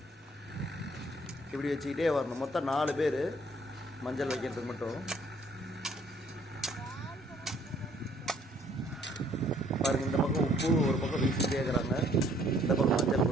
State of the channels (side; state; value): both; normal; correlation 0.62